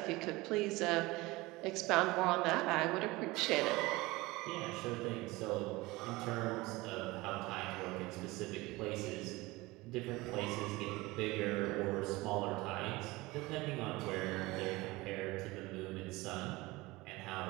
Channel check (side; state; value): left; quieter; 21.2 dB